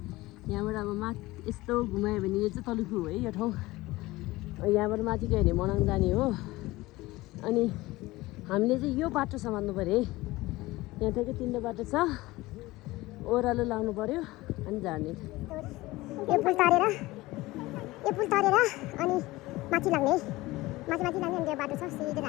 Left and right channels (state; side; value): quieter; right; 19.5 dB